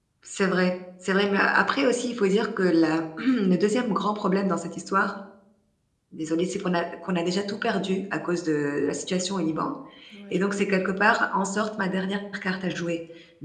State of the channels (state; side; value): identical; both; correlation 1.00